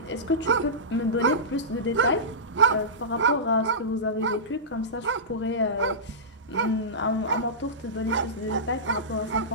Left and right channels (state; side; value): normal; both; correlation -0.17